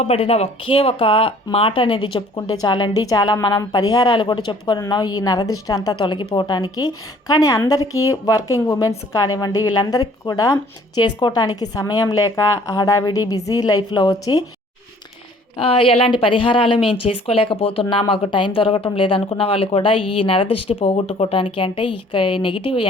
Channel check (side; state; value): both; normal; correlation 0.55